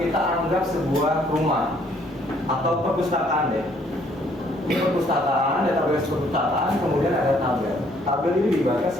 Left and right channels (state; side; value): normal; both; correlation 0.64